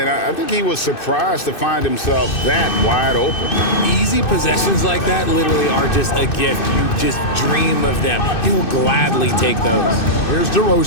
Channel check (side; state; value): right; late; 2.6 ms